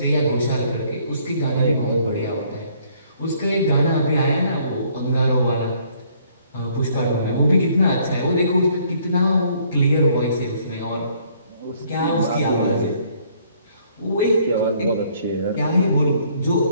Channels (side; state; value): both; inverted; correlation -0.63